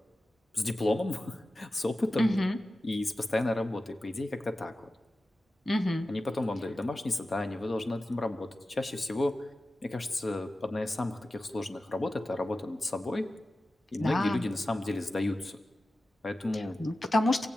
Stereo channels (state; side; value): normal; both; correlation 0.94